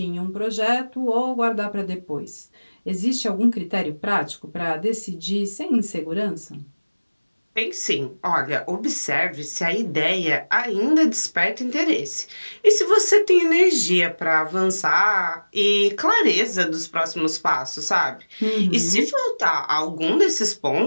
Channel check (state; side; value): inverted; both; correlation -1.00